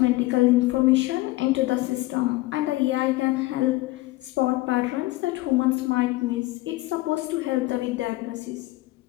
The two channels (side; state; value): right; quieter; 19.3 dB